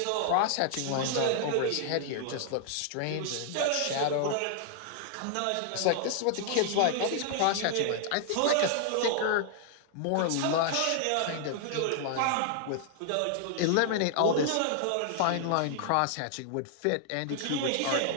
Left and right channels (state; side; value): different; both; correlation 0.00